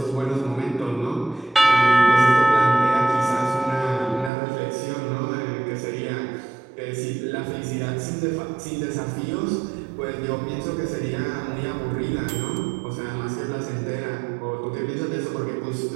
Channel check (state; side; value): drops out; left; at 4.3 s